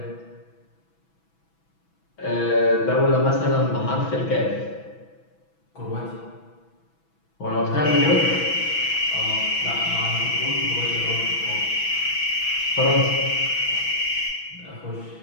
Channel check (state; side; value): late; right; 6.1 ms